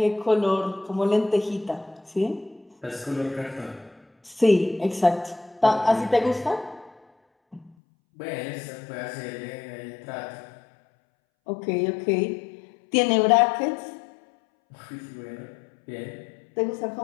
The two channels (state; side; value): drops out; right; at 7.8 s